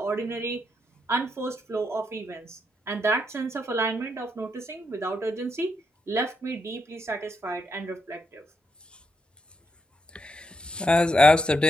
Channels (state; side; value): normal; both; correlation 0.79